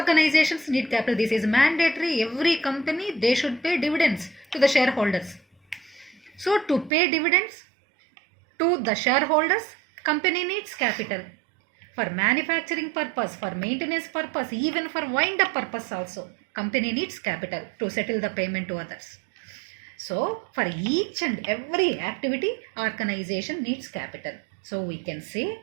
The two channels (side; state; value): left; drops out; at 6.9 s